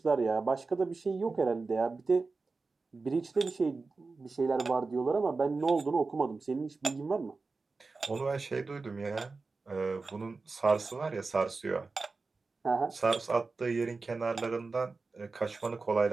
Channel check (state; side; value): quieter; left; 4.0 dB